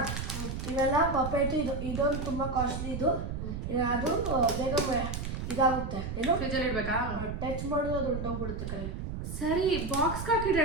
ಇವೆಲ್ಲ ಪಪೇಟು. ಇದೊಂದು ತುಂಬ ಕಾಸ್ಟ್ಲಿ. ಇದು ಅದು ಬೇಗ ಇದಾಗುತ್ತೆ. ಏನು ಫ್ರಿಜ್ಜಲ್ಲಿ ಇಡ್ಬೇಕಾ? ಟಚ್ ಮಾಡೋದು ಅದು ಹೊಂಟೋಗ್ಬಿಡುತ್ತೆ ಕೈ. ಸರಿ, ಬಾಕ್ಸ್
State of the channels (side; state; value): right; noise; rumble, 5 dB below the sound